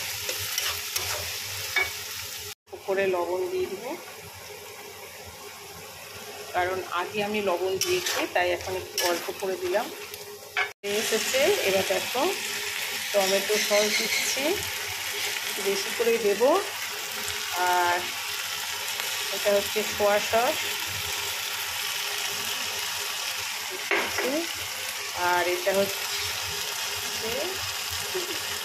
উপরে লবণ দিয়ে দেবো, কারণ আগে আমি লবণ দিয়েছি, তাই এখন একটু অল্প করে দিলাম। এসেছে, এবার দেখো টমেটো সস দিচ্ছি, বেশি করেই দেবো। আর এটা হচ্ছে সোয়া সস, আর এটা হচ্ছে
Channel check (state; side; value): identical; both; correlation 1.00